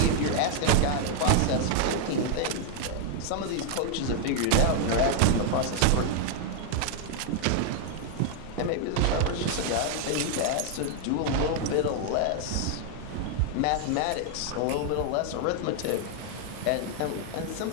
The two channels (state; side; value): different; both; correlation 0.00